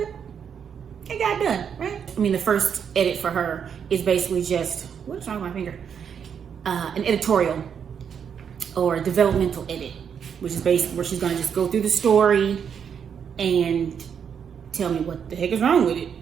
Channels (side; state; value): left; quieter; 7.5 dB